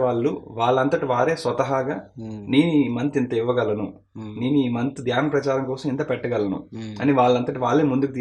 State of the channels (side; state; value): both; identical; correlation 1.00